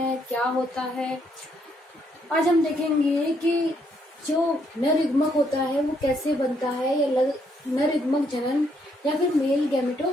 क्या होता है। आज हम देखेंगे कि जो नर युग्मक होता है वो कैसे बनता है, या नर युग्मक जनन या फिर मेल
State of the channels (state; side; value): normal; both; correlation 0.73